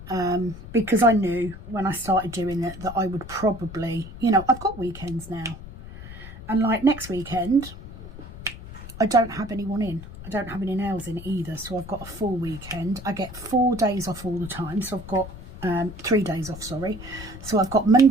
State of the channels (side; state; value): left; noise; rumble, 14 dB below the sound